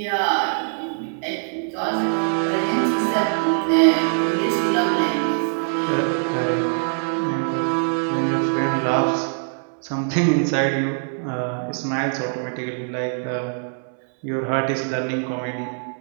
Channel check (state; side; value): silent; left; 64 dB below the other